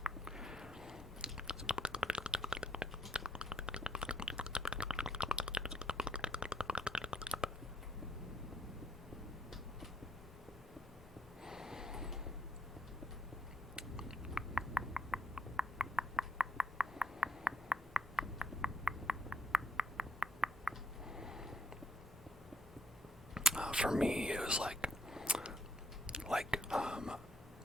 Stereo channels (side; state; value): both; normal; correlation 0.73